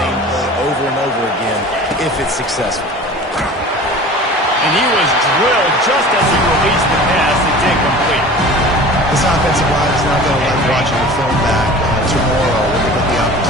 play over and over again if it's successful. And he was drilled just as he released the pass. It's incomplete. This offensive line is not going to like watching the film back tomorrow when they get the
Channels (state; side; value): normal; both; correlation 0.40